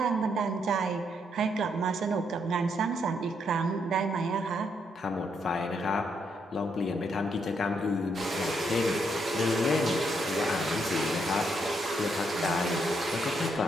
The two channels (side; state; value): both; normal; correlation 0.76